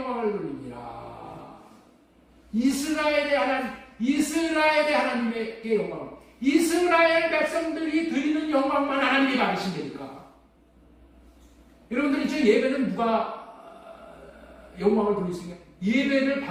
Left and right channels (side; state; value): both; identical; correlation 1.00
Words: 돌리니라. 이스라엘의 하나님께 영광을, 이스라엘 백성들이 드리는 영광만 하나님이 받으신다니까. 여러분들 이제 예배는 누가 영광을 돌릴 수 있냐?